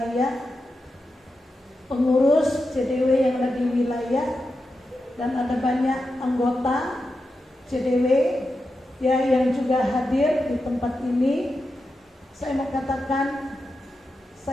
pengurus CDW yang ada di wilayah, dan ada banyak anggota CDW ya yang juga hadir di tempat ini. Saya mau katakan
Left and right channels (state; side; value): normal; both; correlation 0.89